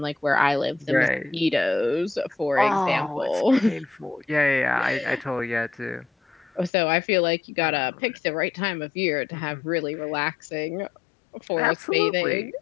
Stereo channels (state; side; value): drops out; right; at 6.7 s